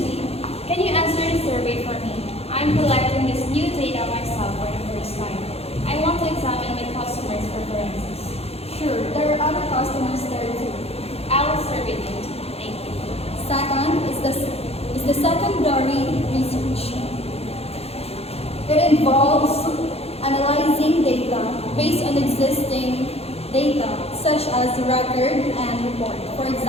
can you answer the survey for me? I'm collecting this new data myself for the first time. I want to examine my customers' preferences. Sure, there are other customers there too. I will survey them. Thank you. Second is the secondary research. It involves analyzing data based on existing data, such as record and report. For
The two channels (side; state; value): right; late; 0.29 ms